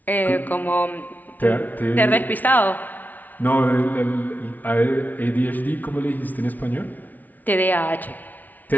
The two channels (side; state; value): right; late; 0.080 ms